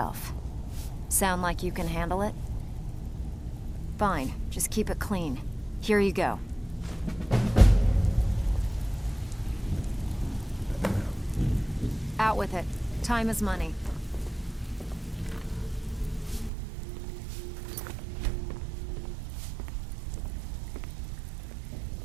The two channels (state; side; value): drops out; left; at 16.5 s